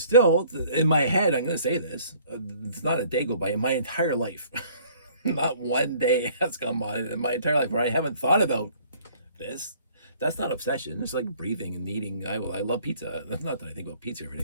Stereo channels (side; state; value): both; inverted; correlation -0.56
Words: still in my head, I'm going to say this, it's not a day go by in my entire life. Not one day has come by in my entire life where I haven't thought about this. That's not obsession. It's like breathing and eating. I love pizza. Not that I think about pizza every